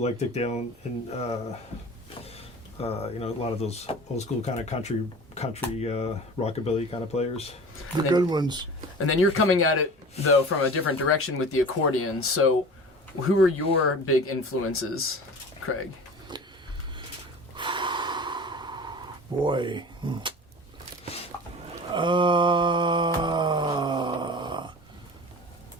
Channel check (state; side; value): normal; both; correlation 0.38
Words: Dick Dale and a lot of those old school kind of country rockabilly kind of players. The good ones. And then you're coming at it though from a different direction with the accordion. So, who are your big influences, Kraig? Boy.